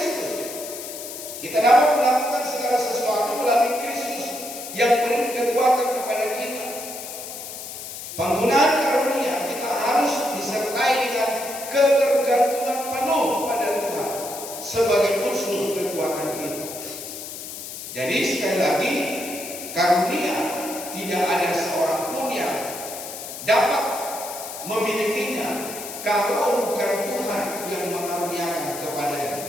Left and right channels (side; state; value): left; noise; hiss, 10 dB below the sound